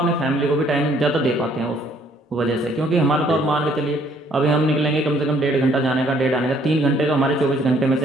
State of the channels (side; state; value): both; normal; correlation 0.64